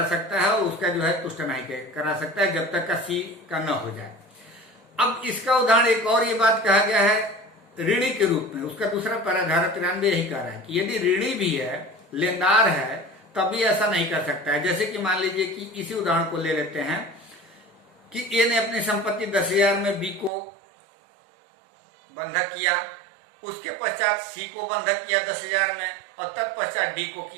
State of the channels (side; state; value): left; drops out; at 20.3 s